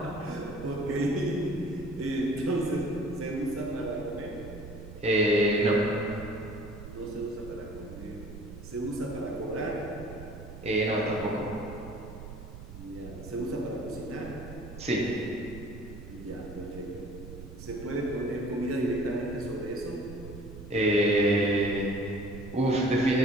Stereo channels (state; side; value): noise; right; rumble, 13 dB below the sound